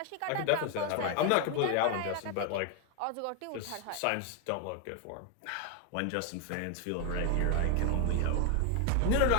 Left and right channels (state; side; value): different; both; correlation 0.01